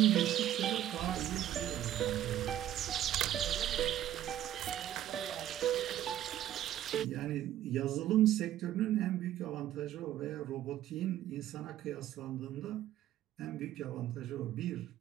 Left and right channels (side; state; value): left; quieter; 12.3 dB